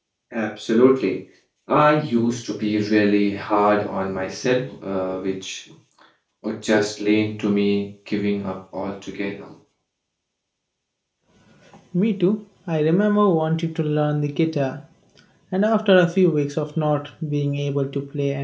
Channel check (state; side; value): identical; both; correlation 1.00